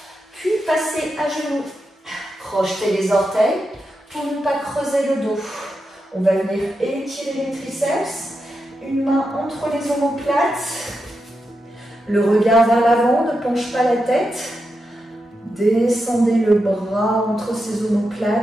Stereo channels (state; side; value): normal; both; correlation 0.87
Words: Puis passez à genoux. Crochetez les orteils Pour ne pas creuser le dos, on va venir étirer les triceps, une main entre les omoplates, le regard vers l'avant, ne penche pas la tête, descendez le bras entre ces